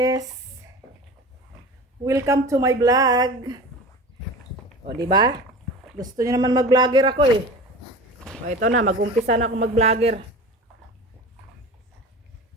Welcome to my vlog. O di ba? Gusto niyo naman mag-vlogger ako eh. O ito na, mag-umpisa na ako mag-vlogger.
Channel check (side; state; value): both; normal; correlation 0.35